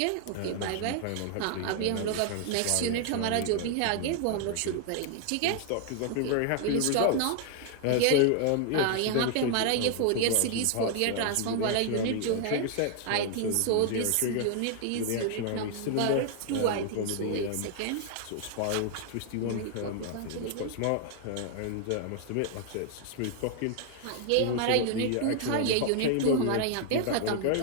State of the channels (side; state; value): both; different; correlation 0.00